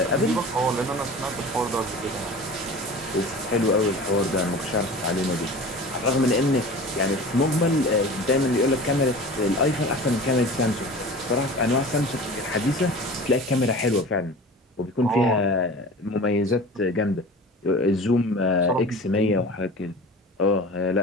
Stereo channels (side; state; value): both; normal; correlation 0.37